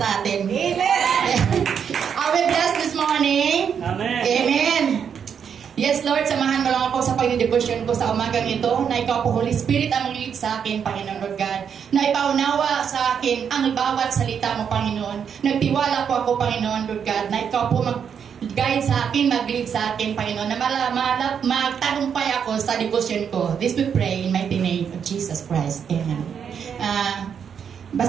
atin. Amen. Are we blessed this morning? Amen. Amen. Yes, Lord, samahan mo lang ako sa pag-devotion ko sa umagang ito na ikaw po, Holy Spirit, ang mag-lead sa akin, Panginoon Lord God. Na ipaunawa sa akin ang bawat salita mo, Panginoon. Nagtiwala po ako, Panginoon Lord God, na ikaw po mag-guide sa akin, mag-lead sa akin, Panginoon. Na magtagumpay ako sa devotion ko. This we pray in mighty name of Jesus Christ. Amen.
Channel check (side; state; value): left; quieter; 7.5 dB